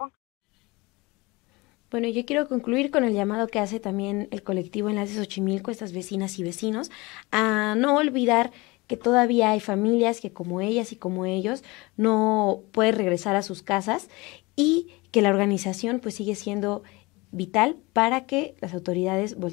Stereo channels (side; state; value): right; quieter; 23.7 dB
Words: Bueno, yo quiero concluir con el llamado que hace también el colectivo Enlace Xochimilco, estas vecinas y vecinos, a no olvidar que todavía hay familias que como ellas y como ellos no pueden regresar a sus casas y que la organización pues sigue siendo vital para que las autoridades